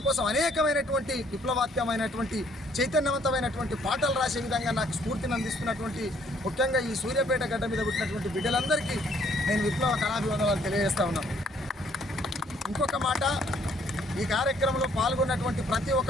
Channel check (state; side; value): normal; both; correlation 0.63